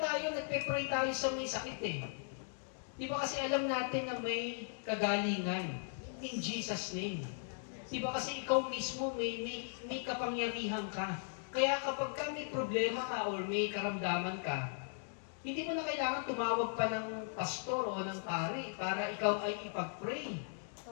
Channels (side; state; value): right; silent; digital silence